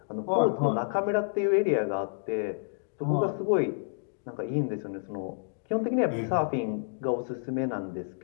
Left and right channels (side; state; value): right; silent; digital silence